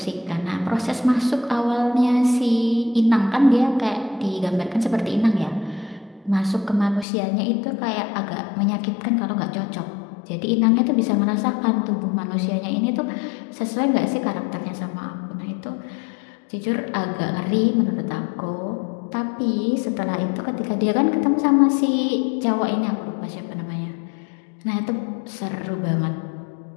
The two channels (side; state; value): right; drops out; at 7.1 s